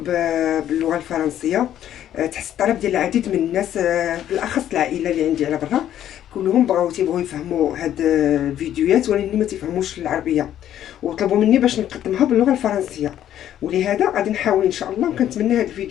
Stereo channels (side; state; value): right; quieter; 11.2 dB